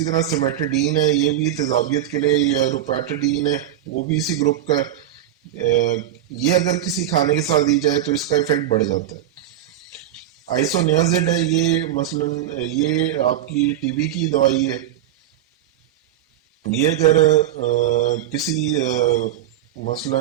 طرح سیمیٹڈین ہے، یہ بھی تیزابیت کے لیے، یا روپیٹڈین ہے وہ بھی اسی گروپ کا ہے، یہ اگر کسی کھانے کے ساتھ دی جائے تو اس کا ایفیکٹ بڑھ جاتا ہے. آئسونیازڈ ہے، یہ مثلا یہ آپ کی ٹی بی کی دوائی ہے، یہ اگر کسی مثلا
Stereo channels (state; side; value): quieter; left; 11.6 dB